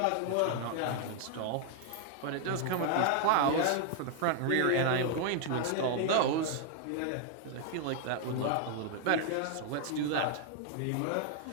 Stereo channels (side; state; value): both; different; correlation 0.00